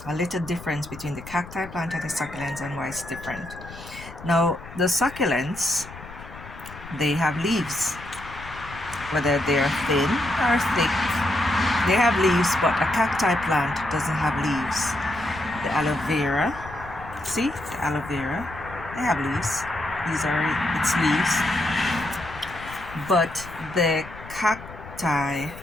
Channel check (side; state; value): left; noise; rumble, 15 dB below the sound